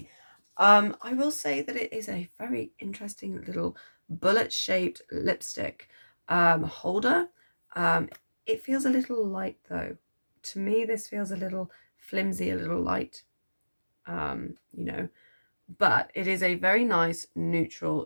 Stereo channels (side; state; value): both; inverted; correlation -1.00